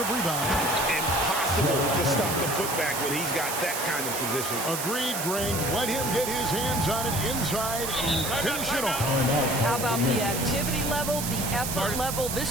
rebound. Impossible to stop the putback when he's got that kind of position. Agreed, Greg. Let him get his hands on it inside and finish it off. How about the activity level, the effort level?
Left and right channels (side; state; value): right; noise; hiss, 4 dB below the sound